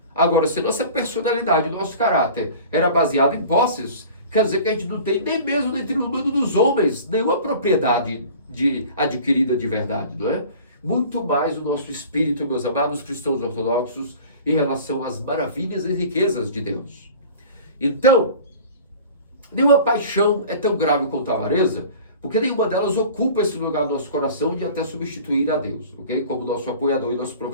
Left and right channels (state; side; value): inverted; both; correlation -0.42